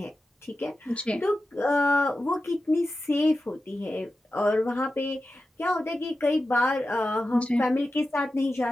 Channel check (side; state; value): both; normal; correlation 0.92